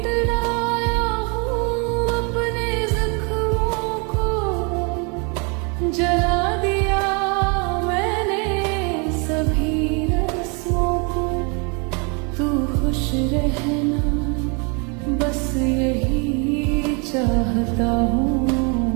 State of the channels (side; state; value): left; quieter; 33.6 dB